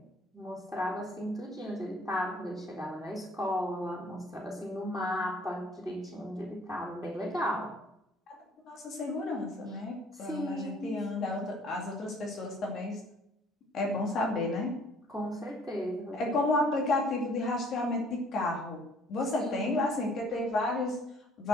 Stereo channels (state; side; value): normal; both; correlation 0.57